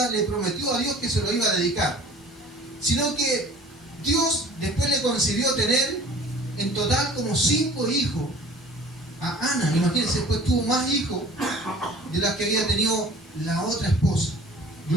le prometió a Dios que se lo iba a dedicar. Sino que Dios después le concedió tener en total como 5 hijos a Ana. Imagínense, después tuvo más hijos de las que había tenido la otra esposa.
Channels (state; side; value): normal; both; correlation 0.47